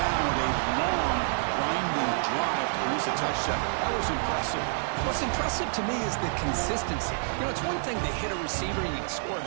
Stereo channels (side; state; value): left; silent; digital silence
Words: with a long, grinding drive to produce a touchdown. That was impressive. What's impressive to me is the consistency. You know, it's one thing to hit a receiver and you can score a